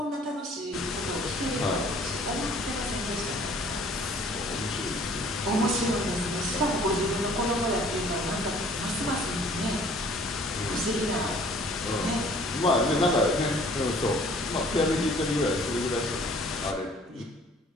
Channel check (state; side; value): normal; both; correlation 0.54